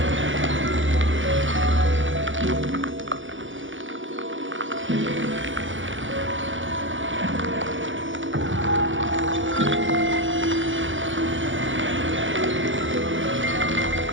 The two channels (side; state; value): left; late; 0.56 ms